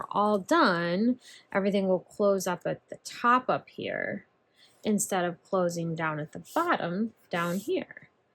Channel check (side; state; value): both; identical; correlation 1.00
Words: all done, everything will close up at the top up here instead of closing down at the bottom down here.